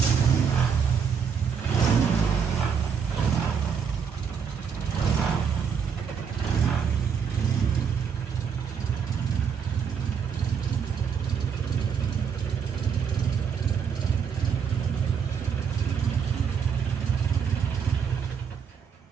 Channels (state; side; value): quieter; left; 6.8 dB